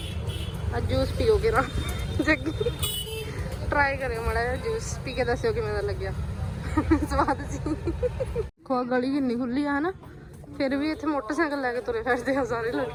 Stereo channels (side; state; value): both; identical; correlation 1.00